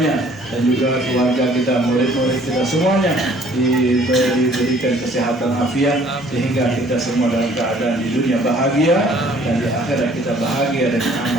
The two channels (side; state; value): both; normal; correlation 0.57